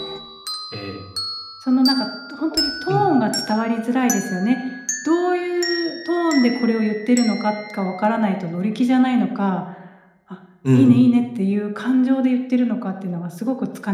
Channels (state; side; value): identical; both; correlation 1.00